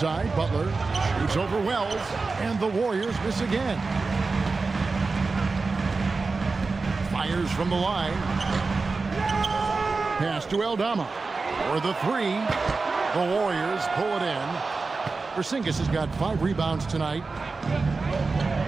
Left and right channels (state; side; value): quieter; left; 4.0 dB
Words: Butler shoots over Wells, and the Warriors miss again. Fires from the line. Pass to Aldama for the 3. The Warriors pull it in. Porzingis has got 5 rebounds tonight.